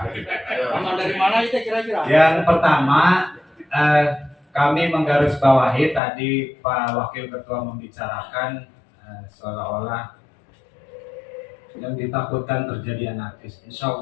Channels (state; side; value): drops out; right; at 6.0 s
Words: Paman dari mana itu kira-kira? Yang pertama, kami menggarisbawahi tadi Pak Wakil Ketua membicarakan seolah-olah yang ditakutkan terjadi anarkis. Insya